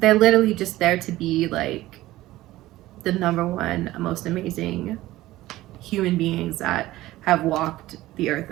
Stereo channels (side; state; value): left; quieter; 16.6 dB